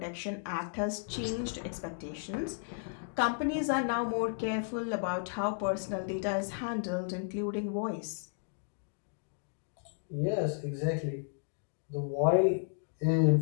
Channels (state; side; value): silent; right; digital silence